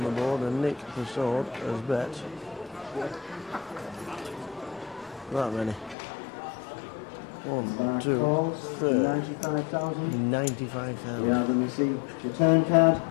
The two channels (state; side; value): drops out; right; at 6.0 s